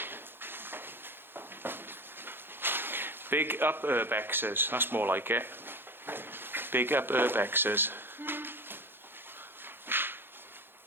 Big up urbexes, that's more like it. Big up urbexes.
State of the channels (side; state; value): left; late; 0.10 ms